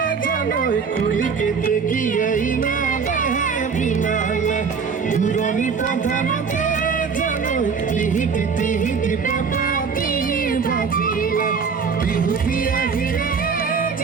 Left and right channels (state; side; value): quieter; left; 5.7 dB